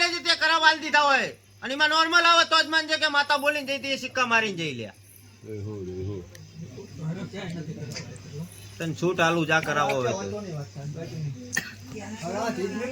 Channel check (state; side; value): identical; both; correlation 1.00